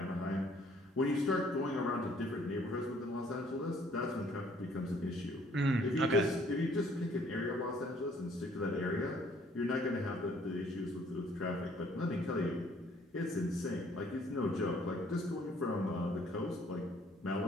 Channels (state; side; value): normal; both; correlation 0.61